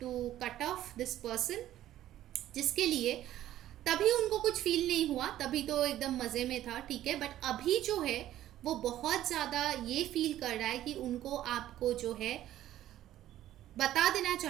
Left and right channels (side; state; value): left; quieter; 13.1 dB